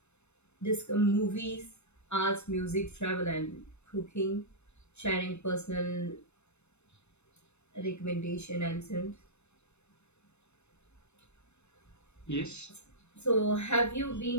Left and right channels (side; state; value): right; late; 0.81 ms